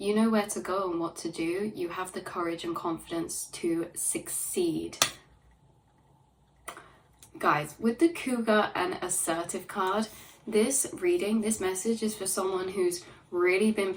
know where to go and what to do. You have the courage and confidence to succeed. Guys, with the Cougar and assertive card, this reading, this message is for someone who's really been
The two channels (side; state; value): both; identical; correlation 1.00